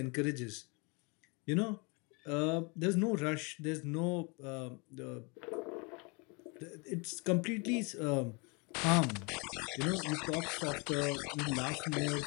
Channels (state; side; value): quieter; right; 30.6 dB